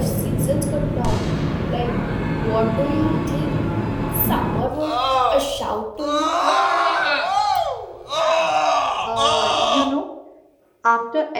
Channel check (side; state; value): both; identical; correlation 1.00